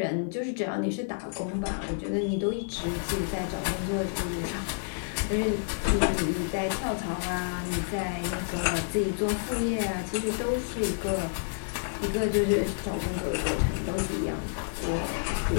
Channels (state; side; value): silent; right; 57 dB below the other